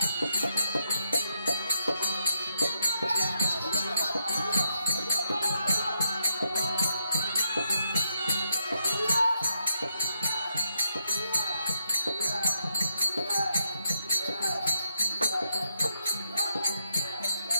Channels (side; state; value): both; inverted; correlation -0.80